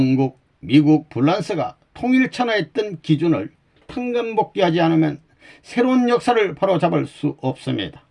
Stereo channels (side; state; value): both; identical; correlation 1.00